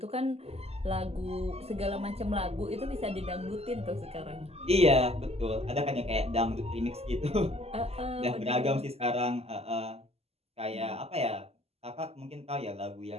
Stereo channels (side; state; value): left; late; 0.29 ms